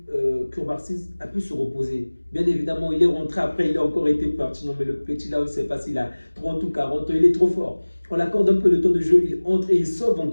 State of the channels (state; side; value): inverted; both; correlation -1.00